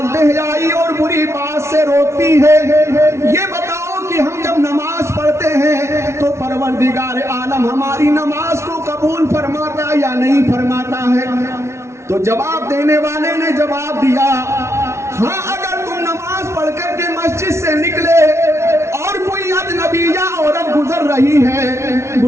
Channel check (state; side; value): late; left; 0.13 ms